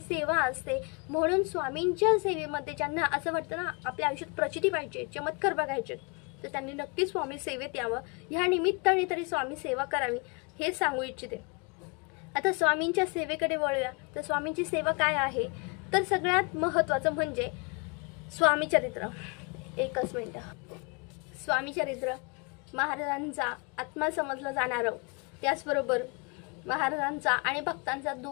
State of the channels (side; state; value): right; quieter; 32.1 dB